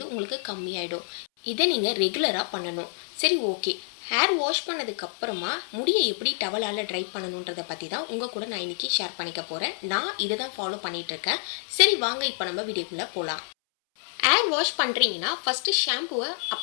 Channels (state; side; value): silent; right; 60 dB below the other